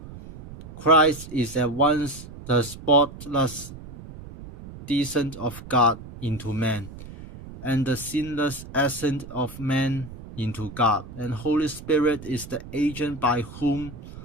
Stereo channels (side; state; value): right; noise; rumble, 15 dB below the sound